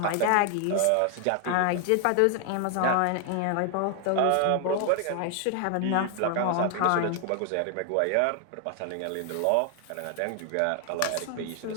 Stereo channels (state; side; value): different; both; correlation 0.00